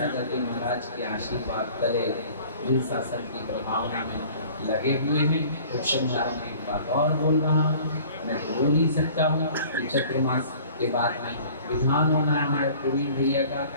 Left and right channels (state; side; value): inverted; both; correlation -0.48